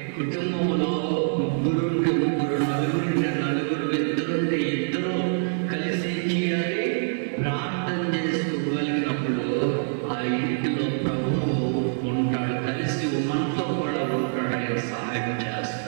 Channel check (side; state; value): left; silent; 62 dB below the other